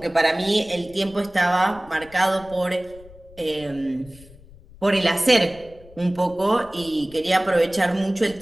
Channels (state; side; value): noise; left; rumble, 22 dB below the sound